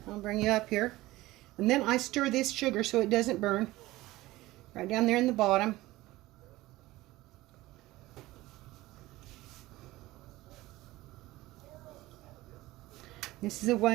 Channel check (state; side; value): quieter; left; 18.2 dB